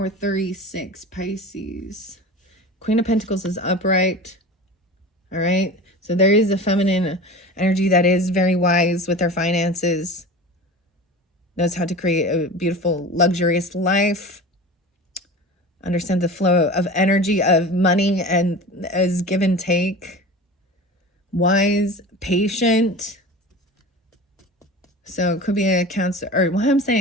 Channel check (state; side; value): normal; both; correlation 0.34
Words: 36, Pisces. Queen of Pentacles is upright. All right. So there is a feminine energy that is very wise with their finances. Knows how to create a beautiful, luxurious life. Understands the flow of energy, of money, and as give and take. Wise, patient. So it could be a Cancer, or well, I'm